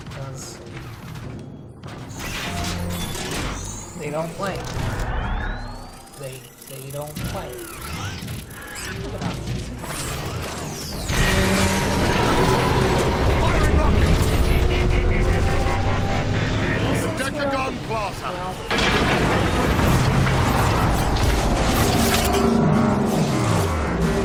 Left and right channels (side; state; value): both; identical; correlation 1.00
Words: because they don't play. They don't play. Look at that. Decagon Plaza.